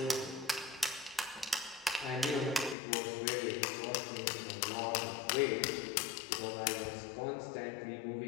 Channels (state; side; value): drops out; right; at 2.8 s